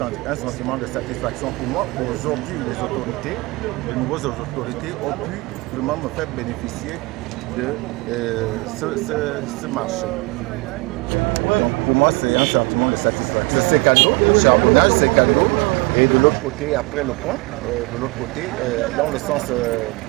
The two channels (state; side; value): quieter; left; 25.4 dB